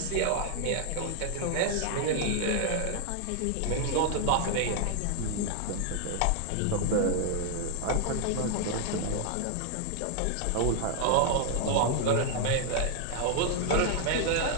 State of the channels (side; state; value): both; different; correlation 0.00